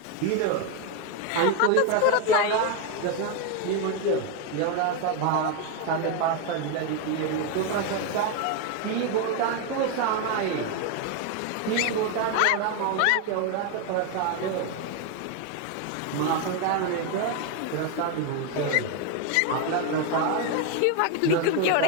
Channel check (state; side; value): different; both; correlation 0.01